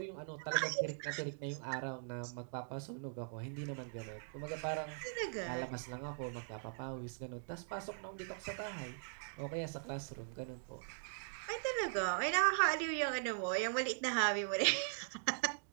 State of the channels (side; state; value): left; silent; digital silence